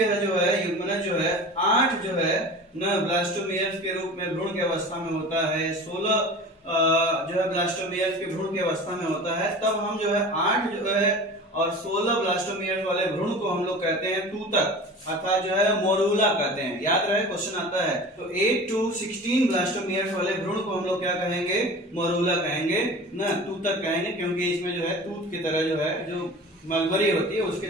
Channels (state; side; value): normal; both; correlation 0.37